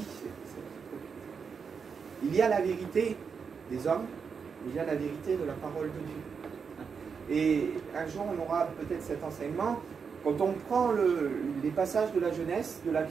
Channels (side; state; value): left; quieter; 6.0 dB